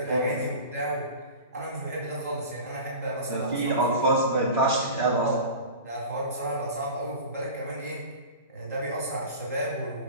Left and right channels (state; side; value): inverted; both; correlation -0.35